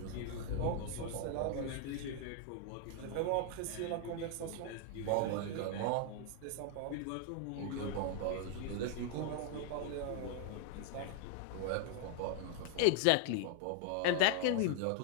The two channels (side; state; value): both; different; correlation 0.00